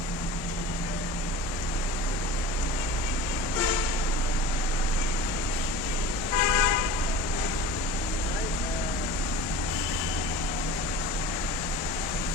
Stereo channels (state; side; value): normal; both; correlation 0.38